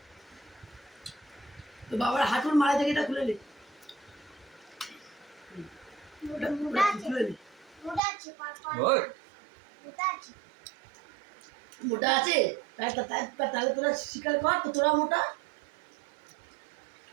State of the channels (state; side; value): drops out; left; at 8.0 s